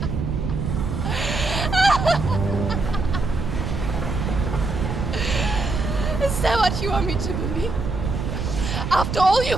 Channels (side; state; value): right; noise; rumble, 3 dB below the sound